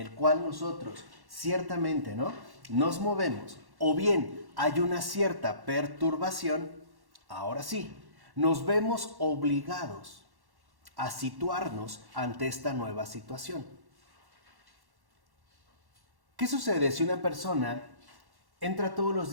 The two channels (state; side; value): late; left; 1.1 ms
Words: cual nosotros ciertamente, ¿no? Nos movemos, o bien hay una cierta perturbación, ahora sí, nos vemos obligados a situarnos ante esta nueva situación. ¿Qué sucede si una persona entra todos los